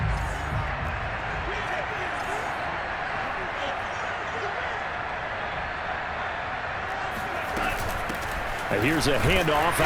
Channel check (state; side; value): identical; both; correlation 1.00